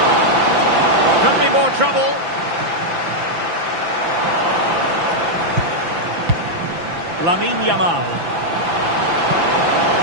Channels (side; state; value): left; late; 5.9 ms